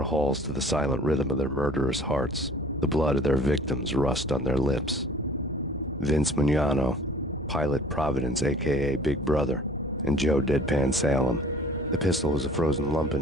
halls to the silent rhythm of their murderous hearts. The blood of their victims rust on their lips. Vince Mugnano, Pilot Providence aka Big Brother, and Joe Deadpan Salem. The pistol was a frozen lump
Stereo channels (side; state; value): both; normal; correlation 0.50